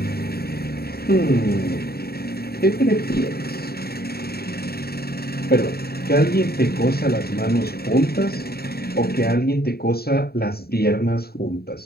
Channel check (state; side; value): late; right; 0.45 ms